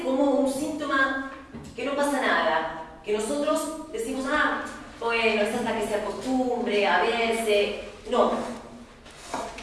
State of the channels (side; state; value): both; identical; correlation 1.00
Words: como un síntoma que no pasa nada, que nosotros decimos, ah, bueno, es hasta que se acostumbre a verse. No.